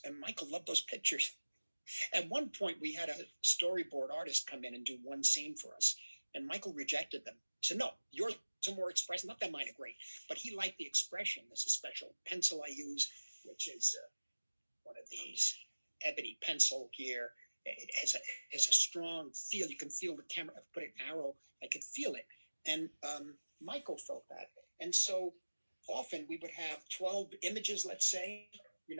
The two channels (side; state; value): both; inverted; correlation -1.00